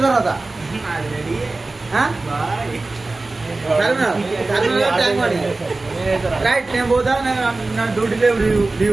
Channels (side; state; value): left; quieter; 3.3 dB